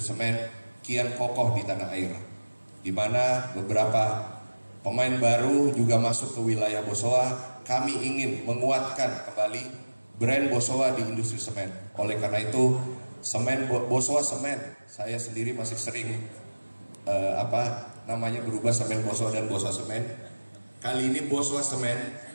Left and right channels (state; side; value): inverted; both; correlation -1.00